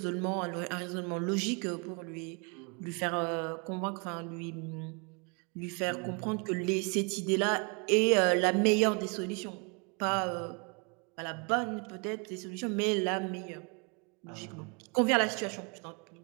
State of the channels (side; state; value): left; quieter; 33.9 dB